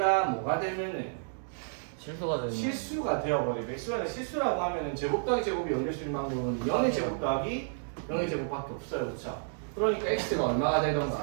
뭐가 되면은 실수가 되는. 실수가 되어버리고 xy가 실수라고 하면은 제곱 더하기 제곱이 0될 수 있는 방법은 0의 제곱 더하기 0의 제곱밖에 없어요. 그렇죠? 그러니까 x가 얼마가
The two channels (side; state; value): left; silent; digital silence